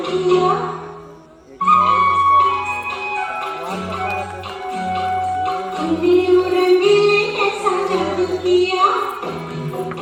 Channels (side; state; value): both; identical; correlation 1.00